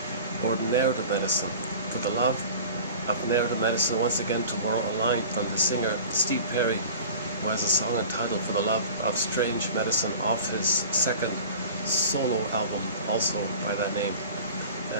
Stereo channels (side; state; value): both; inverted; correlation -0.40